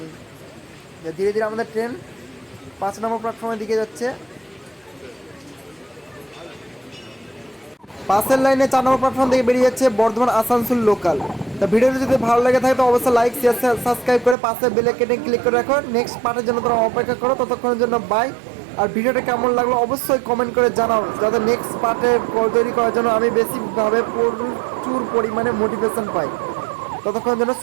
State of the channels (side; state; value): left; drops out; at 14.4 s